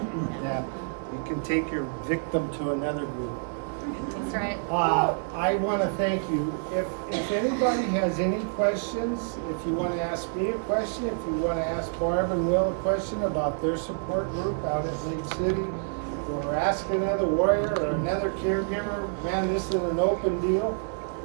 Yeah, you can take your victim to another group. That's right. I want to thank you. If anybody has any questions, if you want to ask me a question, if you want to ask Barb and Will a question about their support group out at Lake City, or ask another warrior or another caregiver, man, this is an open deal.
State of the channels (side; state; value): left; silent; digital silence